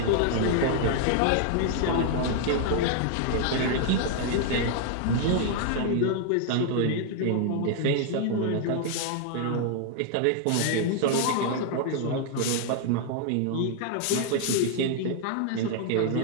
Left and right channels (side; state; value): both; different; correlation 0.00